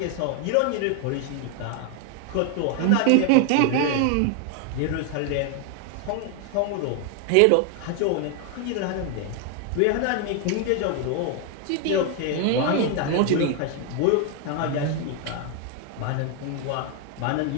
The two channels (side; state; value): both; different; correlation 0.01